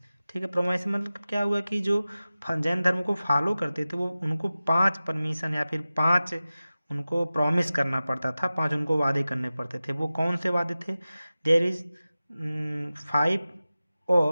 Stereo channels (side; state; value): both; inverted; correlation -0.96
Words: ठीक है। प्रोमिस मतलब क्या हुआ कि जो जैन धर्म को फॉलो करते थे वो उनको 5 परमिशन या फिर 5 उनको प्रॉमिस करना पड़ता था, 5 उनको वादे करने पड़ते थे। वो कौन से वादे थे? देयर इज 5